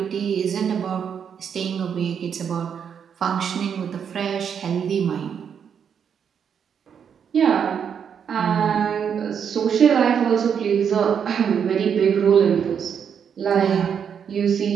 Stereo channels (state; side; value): quieter; left; 7.6 dB